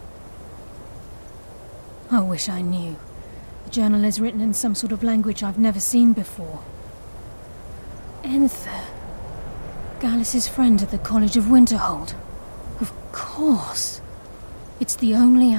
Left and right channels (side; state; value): both; inverted; correlation -1.00